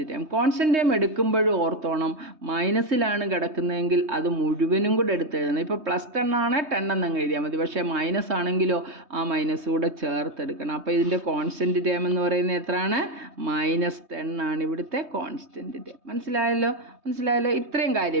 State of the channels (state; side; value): late; left; 3.2 ms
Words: term. Constant term എടുക്കുമ്പോഴും ഓർത്തോണം, മൈനസിലാണ് കിടക്കുന്നതെങ്കിൽ അത് മുഴുവനും കൂടെ എടുത്തെഴുതണം. ഇപ്പോൾ +10 ആണ് 10 എന്നങ്ങ് എഴുതിയാൽ മതി. പക്ഷേ മൈനസ് ആണെങ്കിലോ ആ മൈനസ് കൂടെ ചേർത്തെടുക്കണം. അപ്പോൾ ഇതിൻ്റെ കോൺസ്റ്റൻറ്റ് ടേം എന്ന് പറയുന്നത് എത്രയാണ്? -10 ആണ് ഇവിടുത്തെ കോൺസ്റ്റൻറ്റ് ടേം. മനസ്സിലായല്ലോ. ഇത്രയും